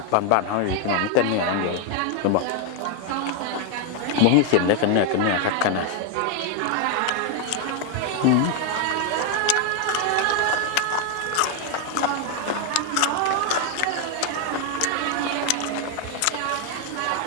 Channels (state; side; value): different; both; correlation 0.01